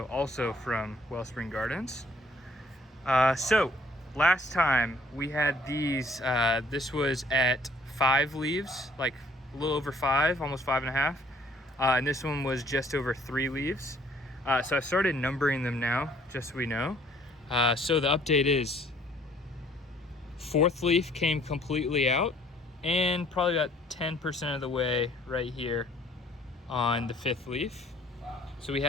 also from Wellspring Gardens. So last time we had these, this was at 5 leaves, like a little over 5, almost 5.5. And this one was just over 3 leaves. So I've started numbering them now, just so we know. So the update is 4th leaf came completely out and probably about 10% of the way right here on the 5th leaf. So we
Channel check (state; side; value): normal; both; correlation 0.60